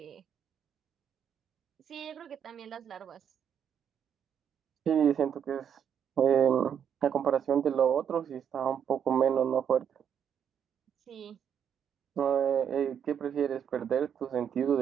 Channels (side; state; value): left; quieter; 8.3 dB